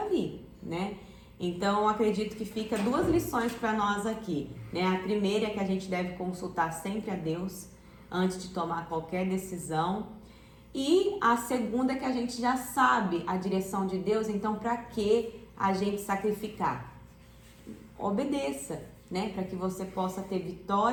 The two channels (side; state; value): both; identical; correlation 1.00